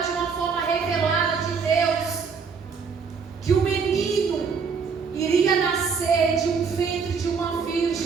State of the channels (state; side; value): quieter; left; 5.6 dB